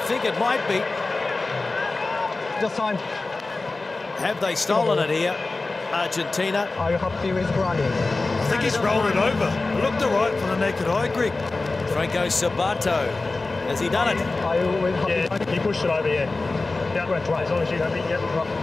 it might be. Just time. Have they stolen it here, Argentina? Are you happy with running? I think he's rolled it over. It looked all right for the naked eye, Greg. Franco Sabato, has he done it? Are you with happy? Yeah, he pushed it over, yeah. Yeah, right. As long as you have it, yeah.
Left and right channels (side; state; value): right; quieter; 3.4 dB